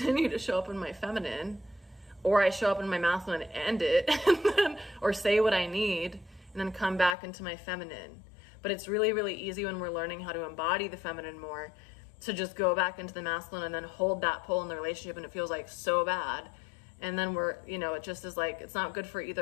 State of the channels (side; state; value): right; drops out; at 7.2 s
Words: to show up in my feminine? Or I show up in my masculine and end it, and then, or say what I need, and then come back into my feminine. But it's really, really easy when we're learning how to embody the feminine more to just go back into the masculine and then hold that pull in the relationship, and it feels like so bad. And then we're, you know, it just is like, it's not good for